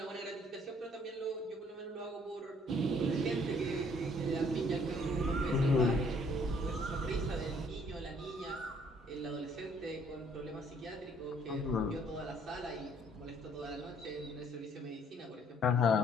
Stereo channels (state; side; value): normal; both; correlation 0.62